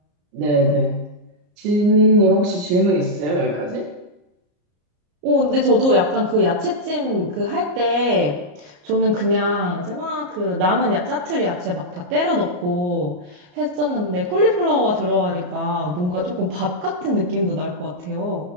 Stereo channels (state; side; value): late; left; 34 ms